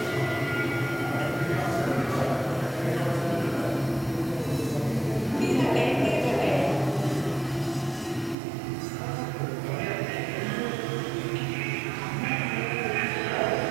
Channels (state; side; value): drops out; left; at 8.3 s